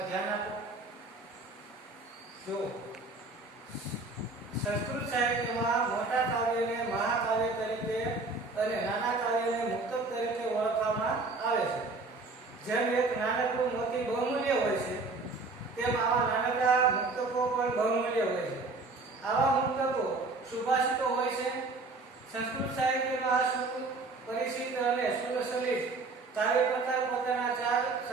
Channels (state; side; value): quieter; left; 3.7 dB